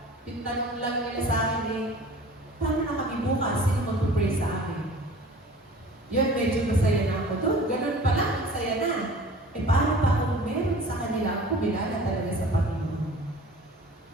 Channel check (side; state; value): both; normal; correlation 0.44